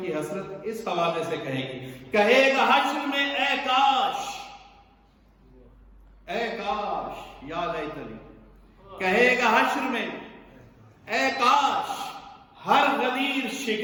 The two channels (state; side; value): identical; both; correlation 1.00